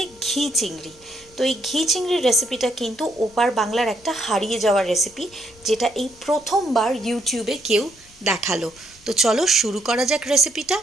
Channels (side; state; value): left; noise; rumble, 27 dB below the sound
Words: ঘি চিংড়ি। তো এই ঘি চিংড়ির রেসিপিটা কিন্তু ওপার বাংলার একটা হারিয়ে যাওয়ার রেসিপি, যেটা এই প্রথমবার ইউটিউবে কেউ দেখালো। তো চলো শুরু করা যাক রেসিপিটা।